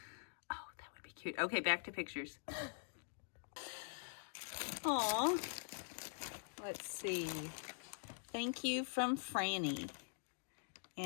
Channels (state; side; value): silent; right; digital silence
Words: Oh, that would be cute. Okay, back to pictures. Aw. Let's see. Thank you from Franny.